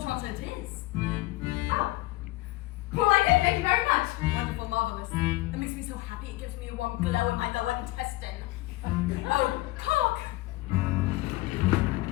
Trotter, it is. Oh. Well, I did. Thank you very much. Wonderful, marvelous. That makes me so happy. It gives me a warm glow in my lower intestine. Oh, cock!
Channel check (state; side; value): quieter; right; 19.7 dB